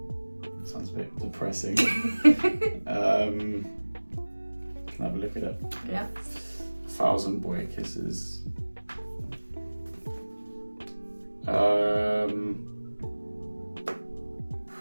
Sounds a bit depressing. Can I have a look at it? Yeah. 1,000 Boy Kisses.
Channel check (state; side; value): inverted; both; correlation -1.00